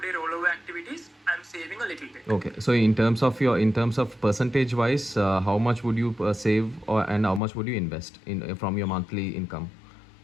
rollover activities I'm saving a little bit. Okay, so in terms of percentage wise, how much would you save and how much would you invest in from your monthly income?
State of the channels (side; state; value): right; drops out; at 7.4 s